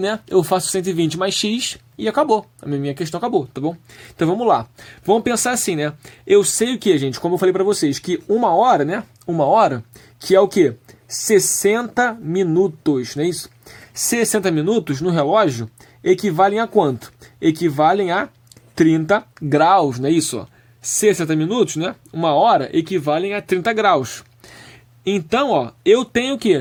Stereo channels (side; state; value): both; identical; correlation 1.00